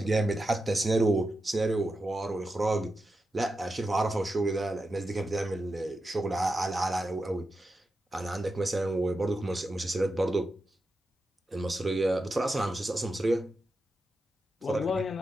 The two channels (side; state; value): both; normal; correlation 0.89